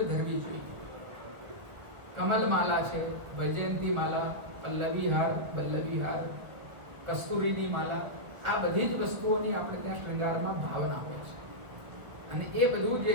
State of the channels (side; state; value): left; late; 1.5 ms